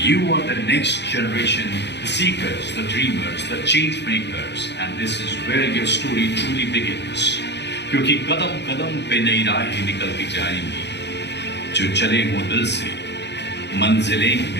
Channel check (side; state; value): right; late; 0.50 ms